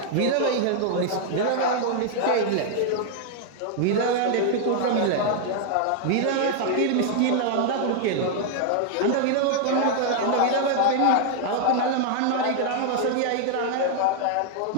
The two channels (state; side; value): different; both; correlation 0.00